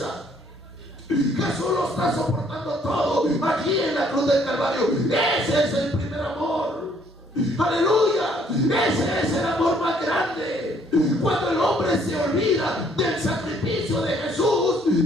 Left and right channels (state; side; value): normal; both; correlation 0.64